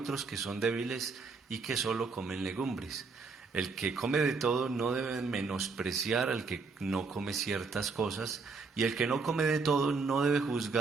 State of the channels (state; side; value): quieter; left; 4.5 dB